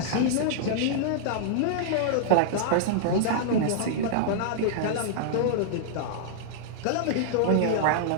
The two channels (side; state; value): both; different; correlation -0.01